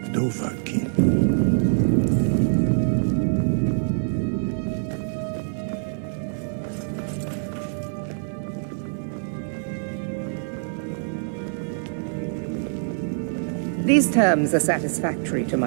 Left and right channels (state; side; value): silent; left; 55 dB below the other